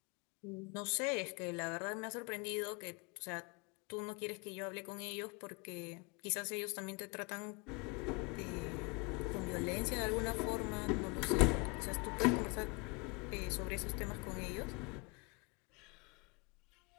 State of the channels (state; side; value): quieter; right; 29.9 dB